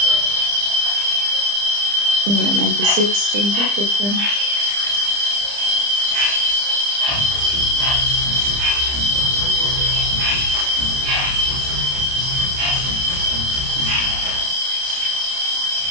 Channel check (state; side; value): late; left; 30 ms